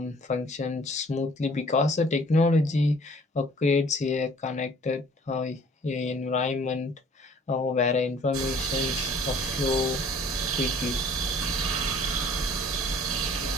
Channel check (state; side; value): normal; both; correlation 0.54